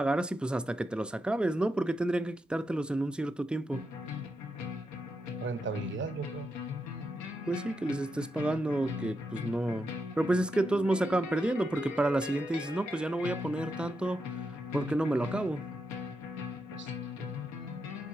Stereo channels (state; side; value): normal; both; correlation 0.84